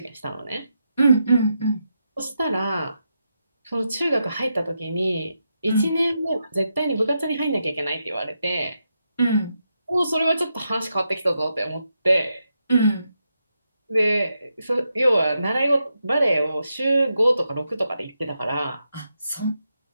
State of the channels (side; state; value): both; inverted; correlation -0.85